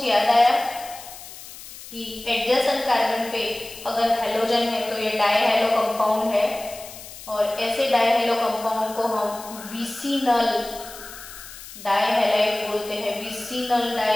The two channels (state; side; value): noise; left; hiss, 15 dB below the sound